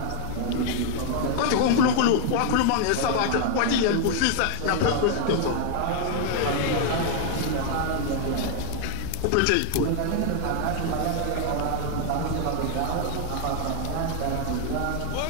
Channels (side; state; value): both; different; correlation 0.00